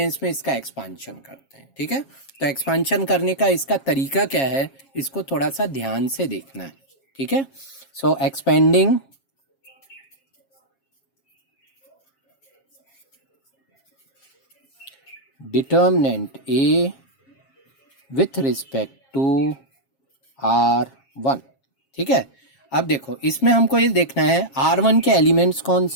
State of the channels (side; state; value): right; late; 7.4 ms